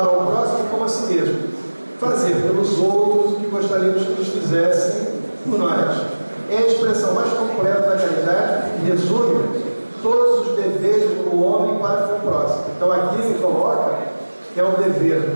ao próximo como a si mesmo. Fazer pelos outros o que gostaríamos que nos fizessem por nós. É a expressão mais completa da caridade e resume todos os deveres do homem para com o próximo. Então aqui ele coloca que é um dever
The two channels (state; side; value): inverted; both; correlation -1.00